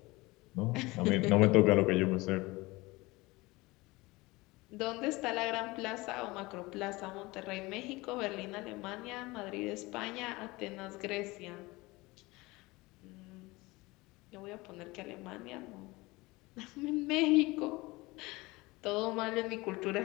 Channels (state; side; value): quieter; right; 22.1 dB